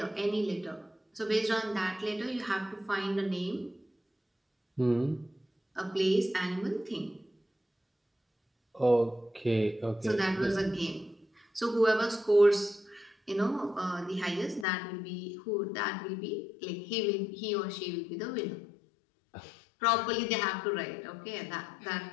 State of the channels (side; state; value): right; drops out; at 14.7 s